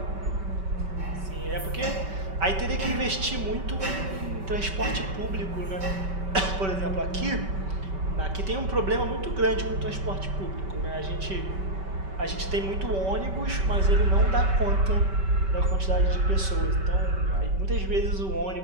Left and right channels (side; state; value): left; late; 5.2 ms